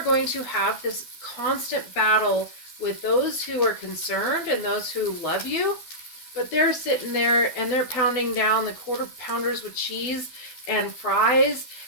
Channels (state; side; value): late; right; 12 ms